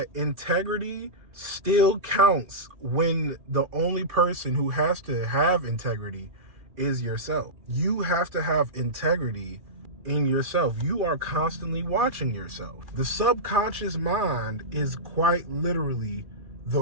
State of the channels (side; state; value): left; late; 2.4 ms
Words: integrity still counts when the only person who has to have integrity is yourself. You have to have integrity in yourself. You are constantly watching yourself. The subconscious mind is quite literally